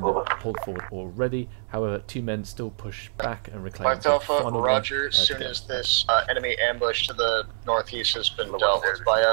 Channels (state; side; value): silent; left; 61 dB below the other